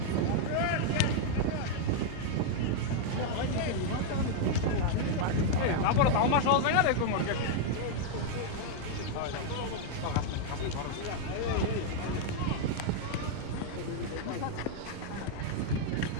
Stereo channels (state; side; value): different; both; correlation 0.00